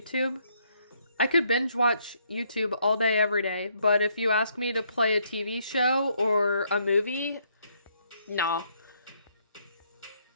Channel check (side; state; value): both; inverted; correlation -0.71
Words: I could binge watch YouTube all day, every day, but if you ask me to play a TV show or a movie, no.